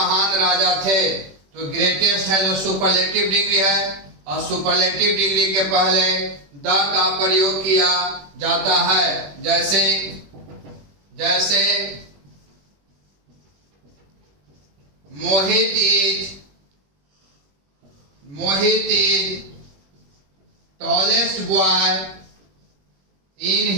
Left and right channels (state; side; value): late; left; 21 ms